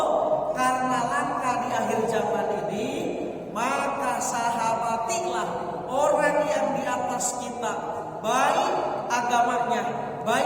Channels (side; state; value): both; identical; correlation 1.00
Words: karena langkah di akhir zaman ini, maka sahabatilah orang yang di atas kita, baik agamanya,